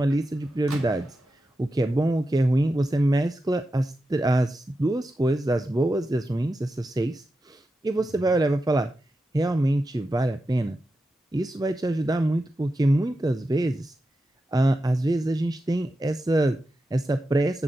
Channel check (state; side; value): normal; both; correlation 0.90